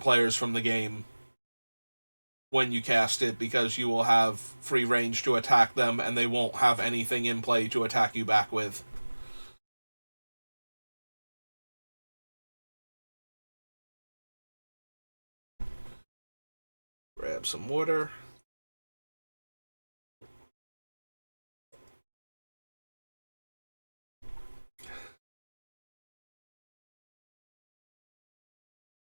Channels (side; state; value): both; inverted; correlation -1.00